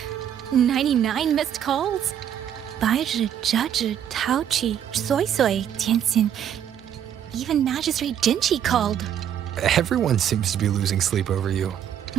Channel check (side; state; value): left; quieter; 9.6 dB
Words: 99 missed calls? 白日折纸陶器soy soy tianxin. Even Magistrate Jinchi called. Everyone seems to be losing sleep over you.